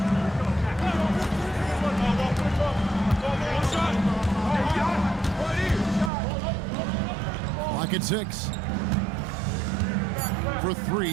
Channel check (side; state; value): left; drops out; at 6.1 s